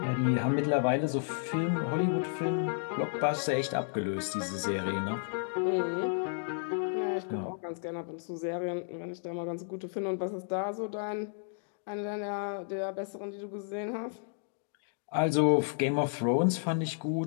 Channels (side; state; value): right; silent; digital silence